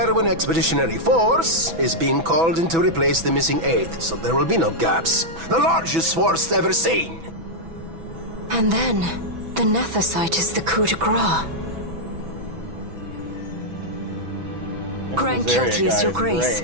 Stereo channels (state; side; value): late; left; 6.1 ms